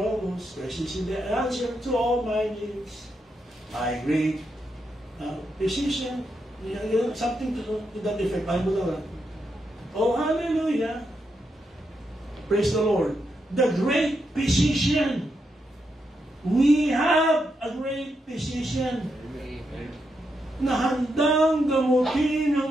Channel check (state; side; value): normal; both; correlation 0.82